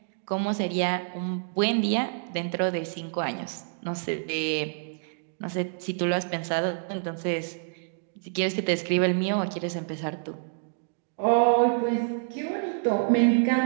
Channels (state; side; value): silent; left; digital silence